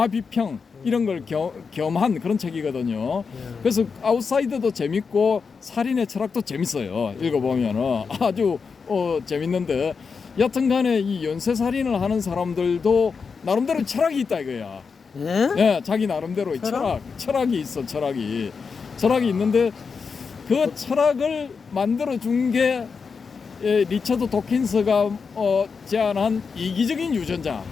비평 이런 걸 겸한 그런 책이거든요. 그래서 아웃사이더도 재밌고 살인의 철학도 재밌어요. 읽어보면은 아주 재밌는데 여튼간에 이 연쇄 살인을 하는 사람들도 나름대로 철학이 있다 이거야. 예, 자기 나름대로의 철학이 있어. 철학이 있는데 그 철학을 만들어 준 게 리처드 도킨스가 제안한 이기적인 유전자.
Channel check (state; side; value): quieter; right; 5.4 dB